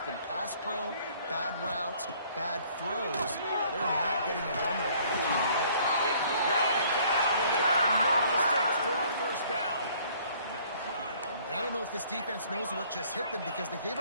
been pass pro, bad routes, bad throws, they're not getting it done right now through the air. Dragged down, and they'll move the sticks for a first down. And I don't know if this defense knows what just hit them, because they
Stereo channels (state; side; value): inverted; both; correlation -0.58